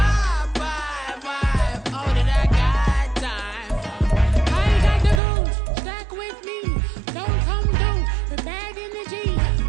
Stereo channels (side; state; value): left; drops out; at 5.2 s